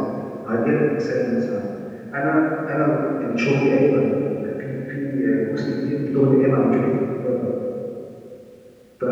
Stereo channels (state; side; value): identical; both; correlation 1.00